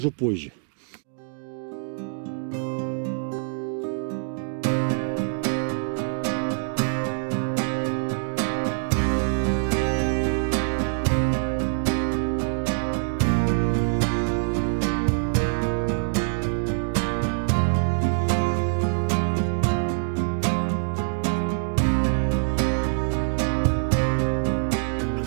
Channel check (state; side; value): silent; left; digital silence